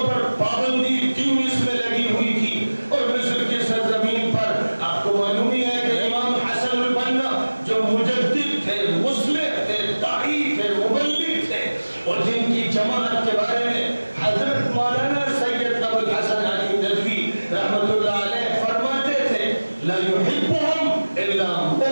پر پابندی تیونس میں لگی ہوئی تھی اور مصر کی سرزمین پر آپ کو معلوم ہی ہے کہ امام حسن البنا جو مجدد تھے, مصلح تھے, داعی تھے, مبلغ تھے اور جن کی جماعت کے بارے میں حضرت مولانا سید ابو الحسن علی ندوی رحمۃ اللہ علیہ فرماتے تھے لا يحبهم الا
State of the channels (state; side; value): inverted; both; correlation -1.00